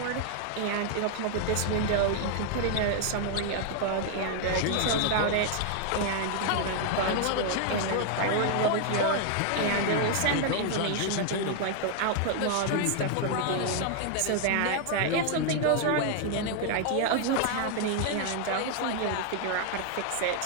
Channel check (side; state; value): both; different; correlation 0.00